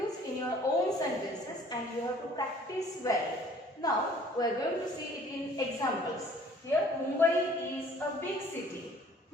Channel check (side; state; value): both; normal; correlation 0.54